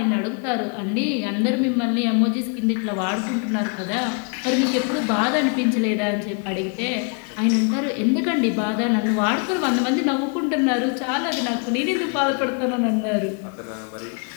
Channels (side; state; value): right; quieter; 38.2 dB